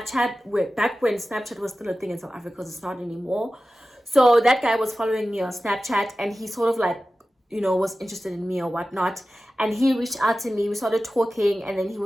Back when Snapchat was still a thing in South Africa, because it's not anymore. So that guy was following me on Snapchat, and he sort of like, was interested in me or whatnot. And he reached out to me. We started talking, and then he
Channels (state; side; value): normal; both; correlation 0.95